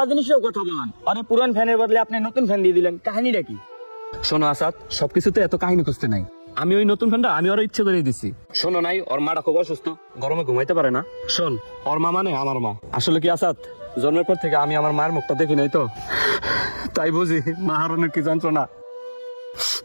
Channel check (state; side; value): inverted; both; correlation -1.00